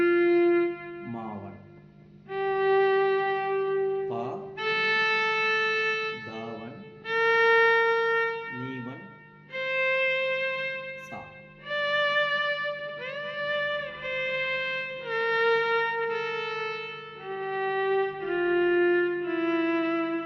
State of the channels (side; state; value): both; identical; correlation 1.00